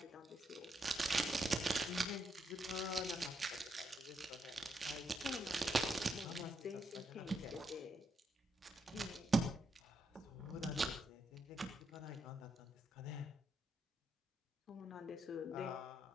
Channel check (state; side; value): normal; both; correlation 0.79